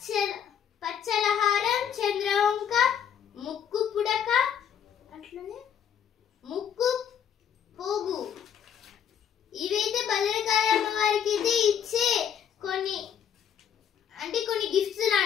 పచ్చలహారం, చంద్రవంక, ముక్కు పుడక, అట్లనే ముక్కు పోగు. ఇవైతే భద్రకాళి అమ్మవారికి అయితే ఇచ్చే కొన్ని గిఫ్ట్స్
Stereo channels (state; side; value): quieter; right; 8.6 dB